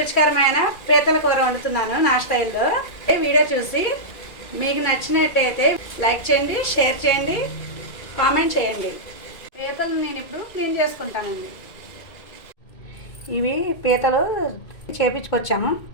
పీతల కూర వండుతున్నాను నా స్టైల్లో. ఈ వీడియో చూసి మీకు నచ్చినట్టయితే లైక్ చేయండి, షేర్ చేయండి, కామెంట్ చేయండి. పీతలు నేను ఇప్పుడు క్లీన్ చేసుకుంటానండి. ఇవి పీతలు చేపించుకొచ్చాము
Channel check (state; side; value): late; right; 2.2 ms